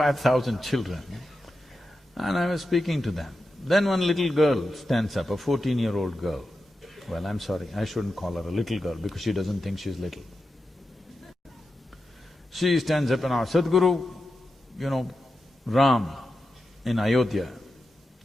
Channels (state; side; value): normal; both; correlation 0.90